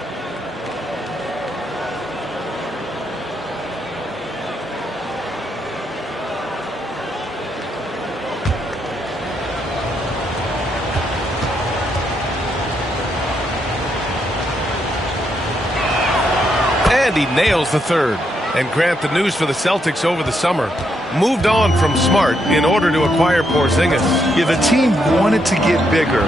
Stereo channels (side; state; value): both; normal; correlation 0.78